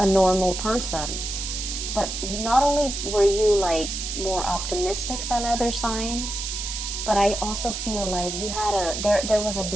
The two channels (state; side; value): noise; right; hiss, 5 dB below the sound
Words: normal person. But not only were you like more optimistic than other signs, but I also feel like you had there was a